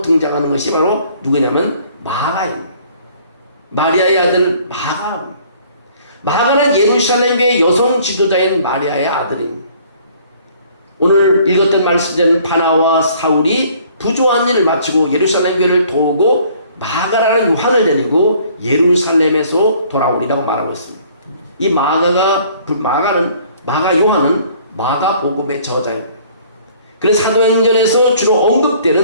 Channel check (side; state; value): both; inverted; correlation -0.57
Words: 등장하는 것이 바로 누구냐면 마가입니다. 마리아의 아들 마가. 마가는 예루살렘 교회 여성 지도자인 마리아의 아들입니다. 오늘 읽었던 말씀대로 바나와 사울이 부조한 일을 마치고 예루살렘 교회를 도우고 마가라는 요한을 데리고 예루살렘에서 돌아오리라고 말하고 있습니다. 이 마가 요한은 마가복음의 저자입니다. 그래서 사도행전에서 주로